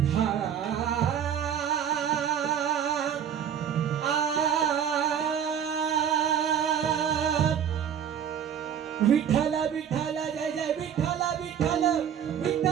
विठ्ठल विठ्ठल जय जय विठ्ठल विठ्ठल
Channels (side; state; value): left; quieter; 8.7 dB